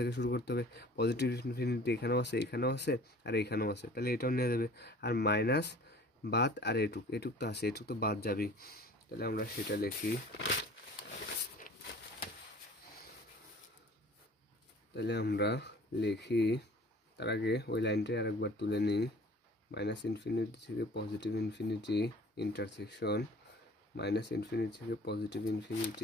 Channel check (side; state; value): both; normal; correlation 0.47